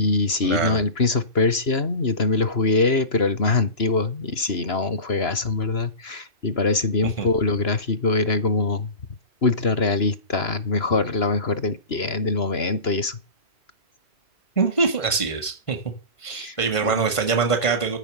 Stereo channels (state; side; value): late; right; 1.5 ms